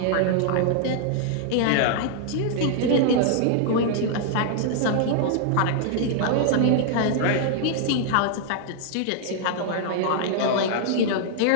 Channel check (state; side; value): different; both; correlation -0.01